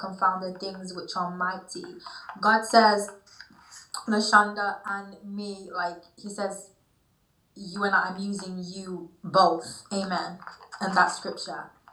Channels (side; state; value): both; identical; correlation 1.00